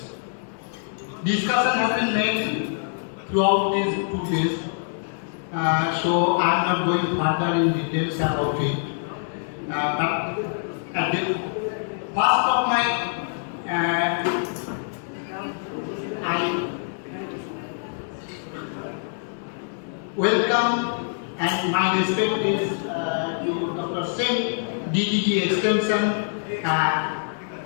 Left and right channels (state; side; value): silent; right; 62 dB below the other